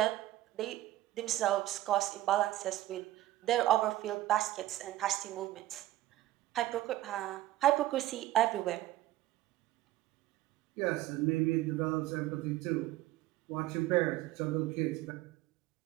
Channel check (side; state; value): left; quieter; 15.3 dB